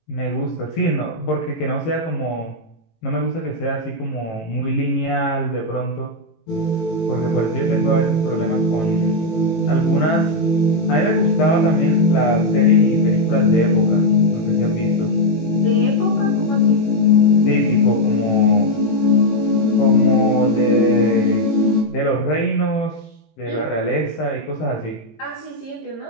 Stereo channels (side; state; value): right; late; 18 ms